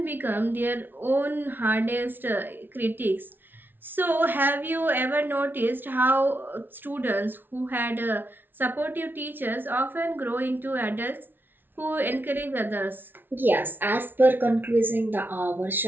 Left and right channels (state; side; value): late; left; 0.098 ms